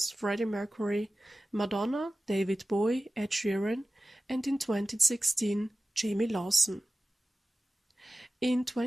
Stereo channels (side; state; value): both; normal; correlation 0.96